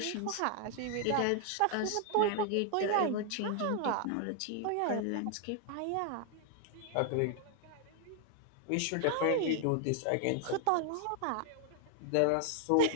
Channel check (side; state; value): both; different; correlation 0.00